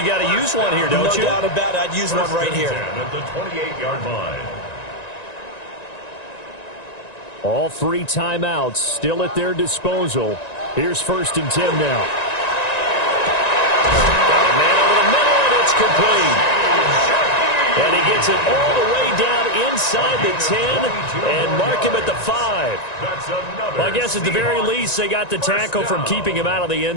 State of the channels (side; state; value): right; late; 1.9 ms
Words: got to use one here, don't you? No doubt about it. I'd use one right here. 1st and 10 at the 28-yard line. All 3 timeouts still at their disposal. Here's 1st and 10 now. Got a man over the middle, and it's complete. And he gets it all the way down inside the 10 and mark him at the 5. Well, I guess at the very least they got the tackle from keeping him out of the